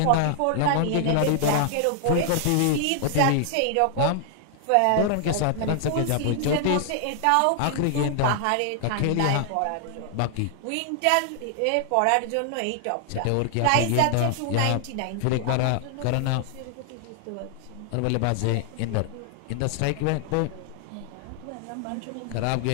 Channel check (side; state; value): both; different; correlation 0.00